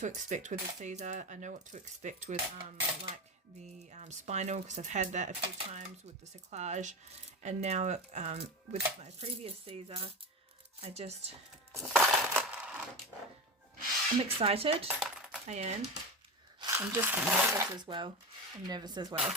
expect with a Caesar. I know what to expect with like the spinal, because I've had that a few times with the cerclage, and now with my previous Caesar, I'm excited. I am. I'm just nervous as well.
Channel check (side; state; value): both; normal; correlation 0.23